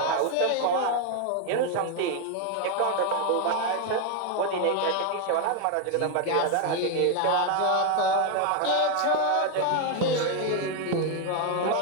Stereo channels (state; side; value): different; both; correlation 0.01